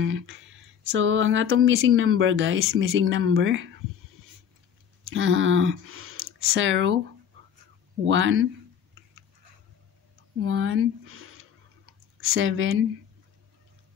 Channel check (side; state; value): right; quieter; 8.3 dB